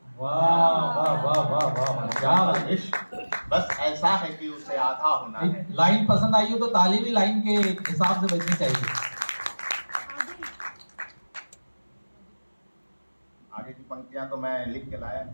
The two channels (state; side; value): inverted; both; correlation -1.00